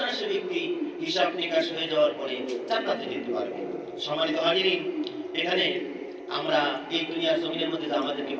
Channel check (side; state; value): both; identical; correlation 1.00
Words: সে ব্যক্তি হিসাব নিকাশ হয়ে যাওয়ার পরে জান্নাতে যেতে পারবে। সম্মানিত হাজিরিন, এখানে আমরা এই দুনিয়ার জমিনের মধ্যে আমাদেরকে